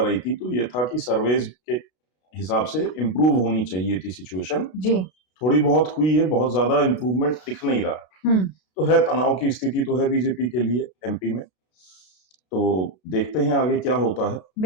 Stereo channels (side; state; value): right; late; 32 ms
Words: थी तो ये था कि सर्वेज के हिसाब से इम्प्रूव होनी चाहिए थी सिचुएशन। जी। थोड़ी बहुत हुई है, बहुत ज्यादा इम्प्रूवमेंट दिख नहीं रहा। तो है, तनाव की स्थिति तो है बीजेपी के लिए एमपी में, तो देखते हैं आगे क्या होता है।